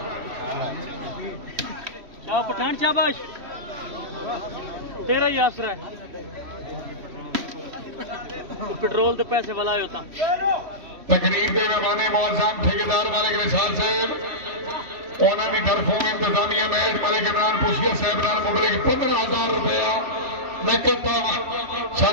पठान, शाबाश, तेरा ही आसरा है। पेट्रोल के पैसे वाला होता। तकरीर के मेहमान मुअज़्ज़म ठेकेदार मालिक निसार साहब, उन्होंने तरफों इंतजामिया मैच मलिक इमरान पुछिया साहब नाल मुबलिक 15,000 रुपया नकद तावन। सर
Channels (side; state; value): left; late; 3.1 ms